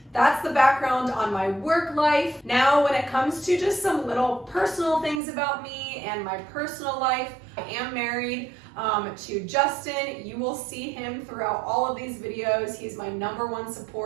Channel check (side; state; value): left; drops out; at 5.2 s